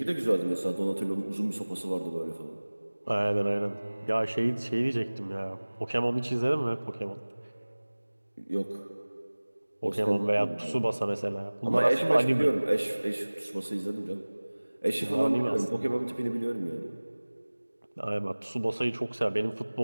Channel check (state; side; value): inverted; both; correlation -1.00